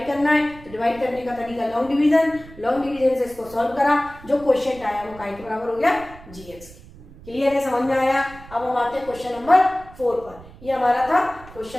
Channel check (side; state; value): right; noise; rumble, 19 dB below the sound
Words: करना है, तो डिवाइड करने का तरीका लॉन्ग डिवीजन से इसको सॉल्व करा, जो क्वोशिएंट आया वो काय के बराबर हो गया, जी एक्स। क्लियर है, समझ में आया। अब हम आते हैं क्वेश्चन नंबर 4 पर। ये हमारा था